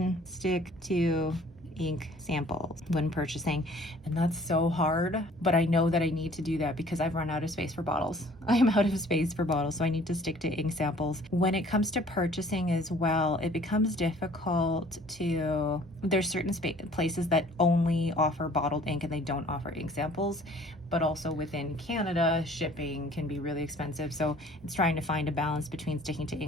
stick to ink samples when purchasing. And that's so hard, but I know that I need to do that because I've run out of space for bottles. I am out of space for bottles, so I need to stick to ink samples. When it comes to purchasing as well, it becomes difficult to, there's certain places that only offer bottled ink and they don't offer ink samples, but also within Canada, shipping can be really expensive. So it's trying to find a balance between sticking to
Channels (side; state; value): both; normal; correlation 0.53